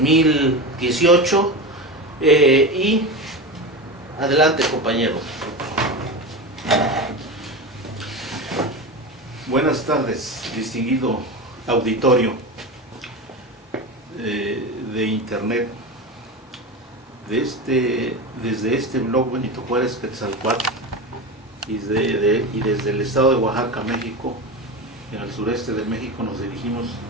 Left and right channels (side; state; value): both; normal; correlation 0.23